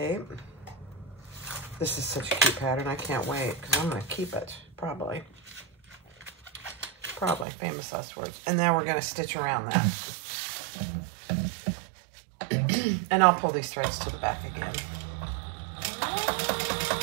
This is such a cute pattern. I can't wait because I'm going to keep it, probably. Probably, famous last words. And now we're going to stitch around that. And I'll pull these threads to the back again.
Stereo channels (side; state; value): left; drops out; at 7.5 s